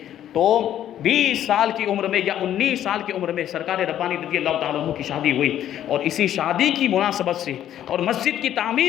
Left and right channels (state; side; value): quieter; right; 11.2 dB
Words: تو 20 سال کی عمر میں یا 19 سال کی عمر میں سرکار ربانی رضی اللہ تعالیٰ عنہ کی شادی ہوئی، اور اسی شادی کی مناسبت سے اور مسجد کی